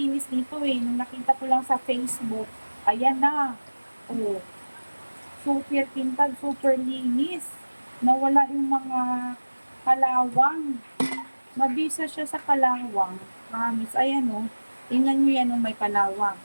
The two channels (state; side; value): inverted; both; correlation -1.00